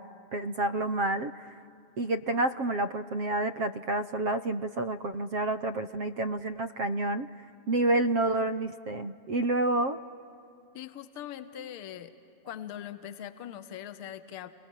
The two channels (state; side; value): late; left; 7.5 ms